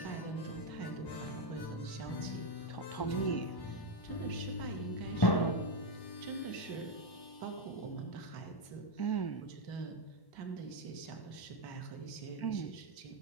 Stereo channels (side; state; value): right; late; 1.0 ms